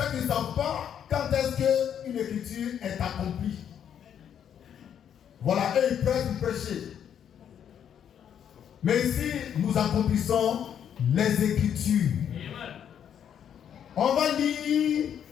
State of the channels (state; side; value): quieter; right; 8.9 dB